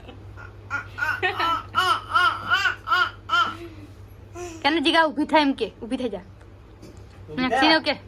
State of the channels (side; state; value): both; identical; correlation 1.00